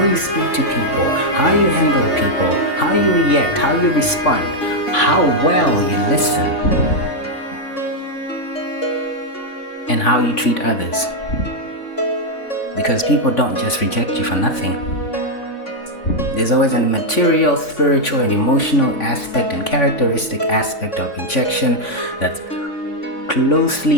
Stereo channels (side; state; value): right; late; 3.5 ms